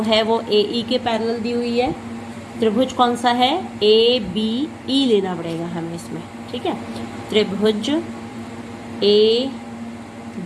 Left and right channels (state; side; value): identical; both; correlation 1.00